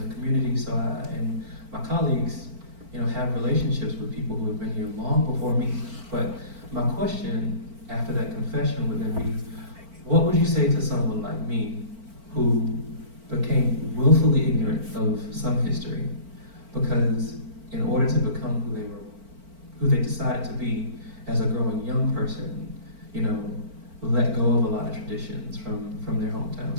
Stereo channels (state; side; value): late; left; 4.4 ms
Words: the community, so and my colleagues, you know, have relationships with people who have been here long before me. But my question after that confession would then be, what would you say to someone like me who became willfully ignorant of some history because in order to become who they decided to be as a growing young person, you know, let go of a lot of traditions from their